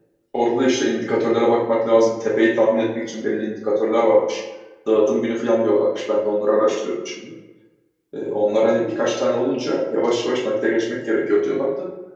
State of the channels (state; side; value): identical; both; correlation 1.00